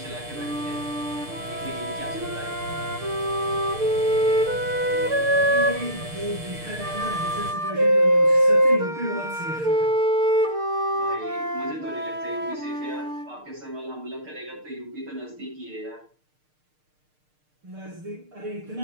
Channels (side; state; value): left; late; 6.6 ms